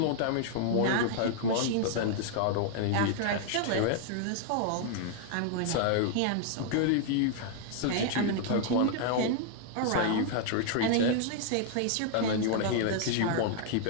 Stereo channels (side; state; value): both; different; correlation -0.01